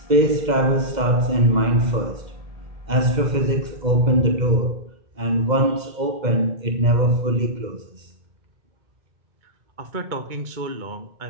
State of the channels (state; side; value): late; left; 2.1 ms